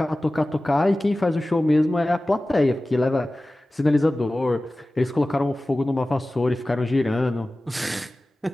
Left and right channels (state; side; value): normal; both; correlation 0.96